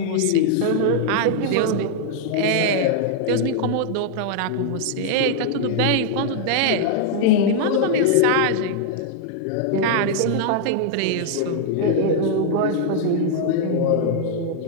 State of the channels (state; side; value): different; both; correlation -0.01